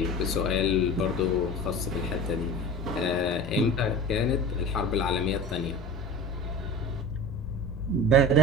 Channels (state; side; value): normal; both; correlation 0.35